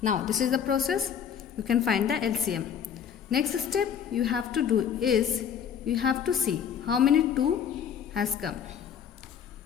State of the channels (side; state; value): right; quieter; 8.1 dB